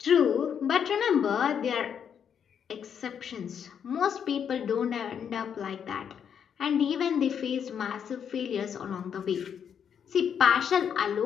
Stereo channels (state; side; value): quieter; right; 7.9 dB